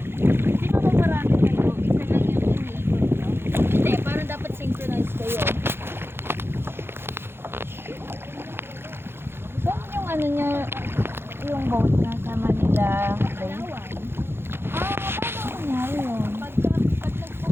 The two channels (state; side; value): late; left; 0.11 ms